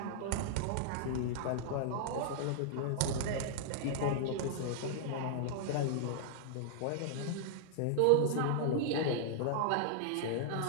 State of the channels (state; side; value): different; both; correlation -0.01